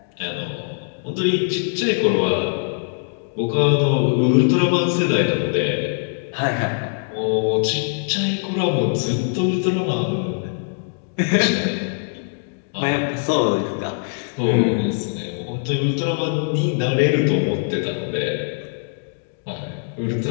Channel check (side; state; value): right; silent; digital silence